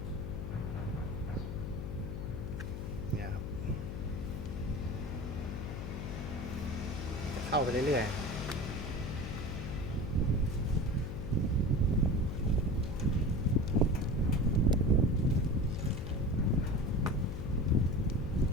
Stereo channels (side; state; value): left; noise; hum, 5 dB below the sound